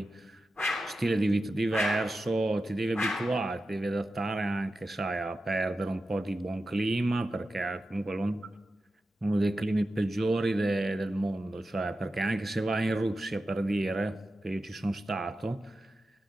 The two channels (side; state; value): both; normal; correlation 0.92